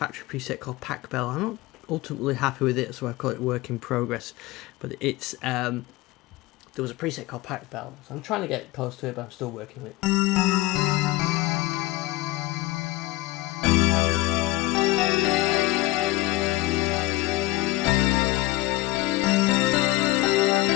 preset called Pack Bell. I'm not ultimately happy with it, so I call it work in progress. But it's there was a preset called Pirate Bell, so I'm trying to get close to it, but I'm still working with it.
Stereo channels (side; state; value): right; quieter; 18.8 dB